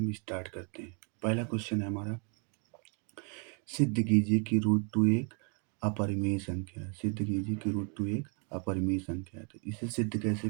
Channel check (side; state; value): left; quieter; 37.4 dB